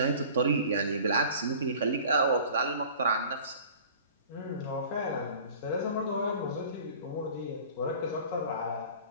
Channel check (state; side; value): inverted; both; correlation -0.45